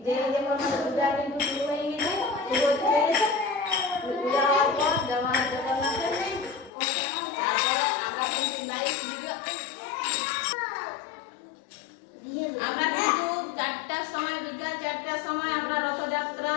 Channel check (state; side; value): drops out; right; at 6.7 s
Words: যে যেমন আমাদের পূজা কিন্তু শুরু হয়ে গেছে, শুরু হতে হয়ে গেছে। পূজা হওয়ার পর জগন্নাথের তারপরে আমরা কিন্তু লাইভ ভিডিও আমরা কিন্তু 4টার সময়, বিকাল 4টার সময় আমরা রথযাত্রা